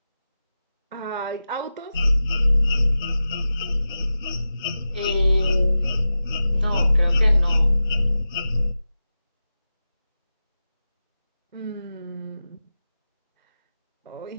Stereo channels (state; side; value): inverted; both; correlation -0.93